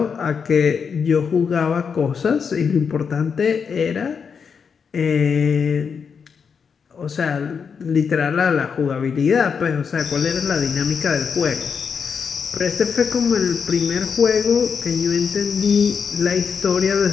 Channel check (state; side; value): quieter; right; 6.2 dB